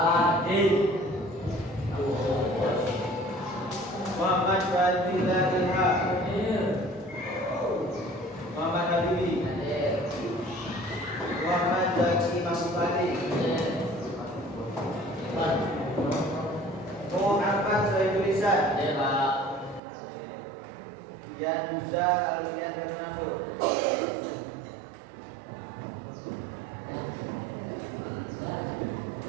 Muhammad Fadila Ilham. Muhammad Habibi. Muhammad Zaki Mahmudi. Muhammad Sohibul Lisan. Dan Musa Alian Bernardo.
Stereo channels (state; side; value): drops out; left; at 19.8 s